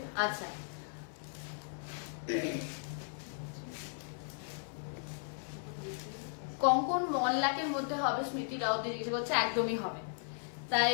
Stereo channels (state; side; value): silent; right; 54 dB below the other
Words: আচ্ছা, কঙ্কন 1 লাখের মধ্যে হবে? স্মৃতি রাউত জিজ্ঞেস করছে, একদমই হবে, তাই